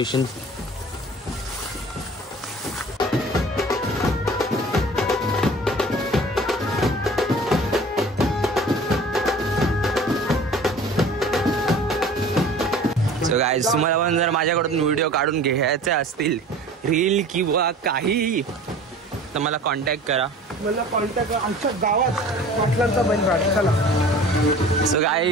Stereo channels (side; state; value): both; normal; correlation 0.43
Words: सो गाईज तुम्हाला पण जर माझ्याकडून व्हिडिओ काढून घ्यायचे असतील, रील किंवा काही, तर मला कॉन्टॅक्ट करा. मला कॉन्टॅक्ट आमच्या गावात पाटलांचा बैल. चला. सो